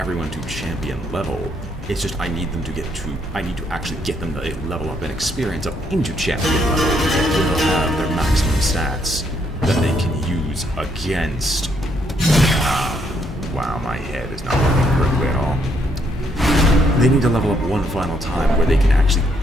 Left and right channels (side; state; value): both; normal; correlation 0.72